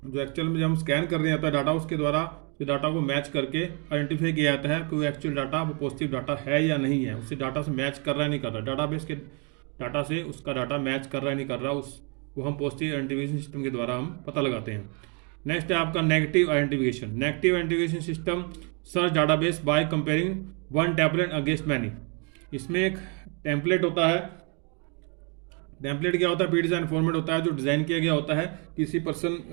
जो एक्चुअल में जब हम स्कैन कर रहे होता है डाटा, उसके द्वारा उस डाटा को मैच करके आइडेंटिफाई किया जाता है कि वो एक्चुअल डाटा वो पॉजिटिव डाटा है या नहीं है, उससे डाटा से मैच कर रहा है नहीं कर रहा, डाटाबेस के डाटा से उसका डाटा मैच कर रहा है नहीं कर रहा, वो हम पॉजिटिव आइडेंटिफिकेशन सिस्टम के द्वारा हम पता लगाते हैं। नेक्स्ट है आपका negative identification. Negative identification system search database by comparing one template against many. इसमें एक टेम्पलेट होता है। टेम्पलेट क्या होता है? प्री डिजाइन फॉर्मेट होता है जो डिज़ाइन किया गया होता है। किसी पर्सन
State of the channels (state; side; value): quieter; left; 35.6 dB